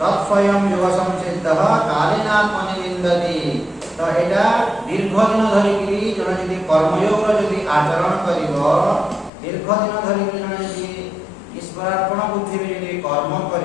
योगसंसिद्धः कालेनात्मनि विन्दते तो एटा दीर्घ दिन धरि कि जने यदि कर्मयोग यदि आचरण करिवो दीर्घ दिन धरि जने यदि ईश्वरार्पण बुद्धि रे यदि कर्म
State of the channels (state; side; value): drops out; right; at 9.3 s